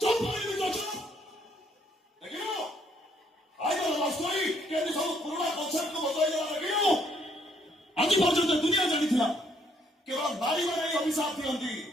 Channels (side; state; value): both; normal; correlation 0.69